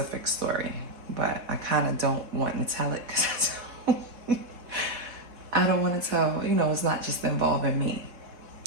story, but I kind of don't want to tell it because I don't want to tell, you know, it's not just involving me.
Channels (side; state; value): left; late; 4.1 ms